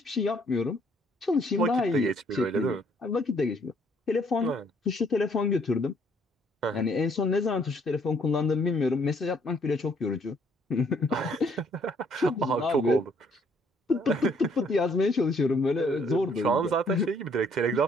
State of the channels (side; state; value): both; normal; correlation 0.65